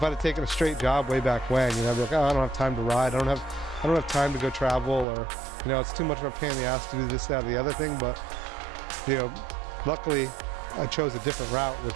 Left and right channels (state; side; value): drops out; left; at 5.1 s